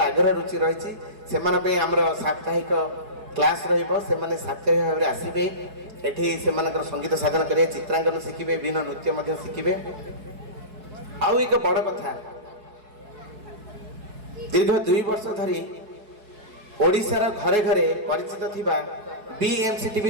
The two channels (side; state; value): left; late; 4.7 ms